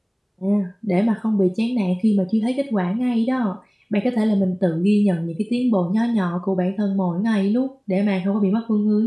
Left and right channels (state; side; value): identical; both; correlation 1.00